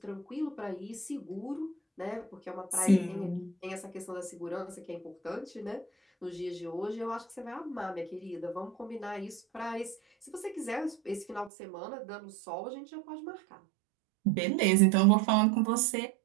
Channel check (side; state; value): left; drops out; at 11.5 s